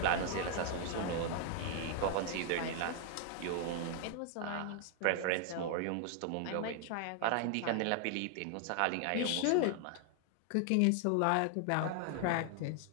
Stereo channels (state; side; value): different; both; correlation 0.00